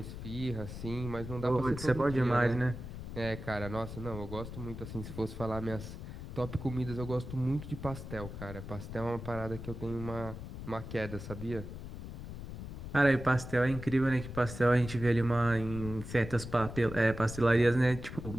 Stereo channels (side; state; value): left; noise; rumble, 9 dB below the sound